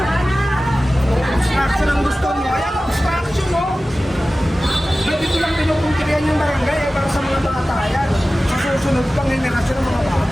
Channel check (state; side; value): normal; both; correlation 0.96